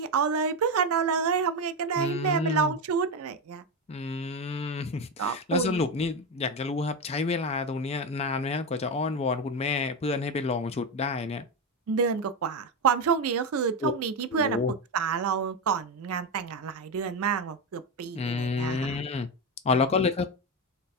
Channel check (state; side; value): normal; both; correlation 0.13